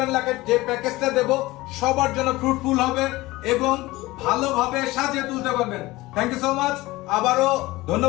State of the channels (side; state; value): right; quieter; 19.5 dB